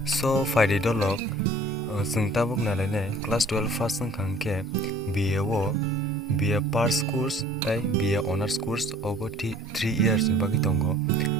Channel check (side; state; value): both; normal; correlation 0.52